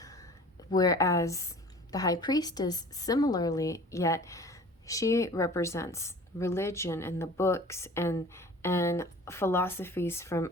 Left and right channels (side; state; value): both; normal; correlation 0.44